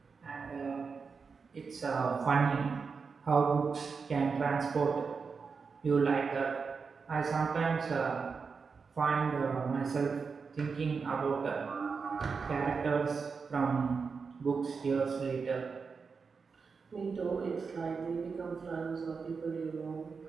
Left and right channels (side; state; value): left; quieter; 5.2 dB